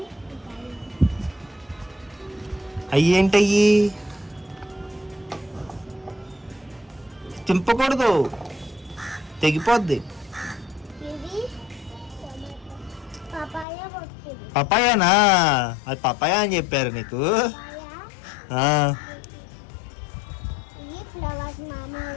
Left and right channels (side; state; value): right; drops out; at 13.7 s